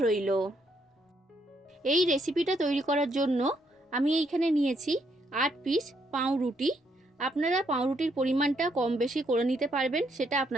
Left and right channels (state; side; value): normal; both; correlation 0.74